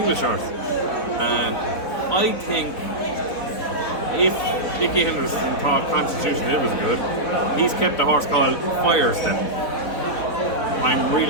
horse. And I think if Nicky Henderson thought Constitution Hill was good, he's kept a horse called Firestep. I'm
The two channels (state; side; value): late; right; 4.2 ms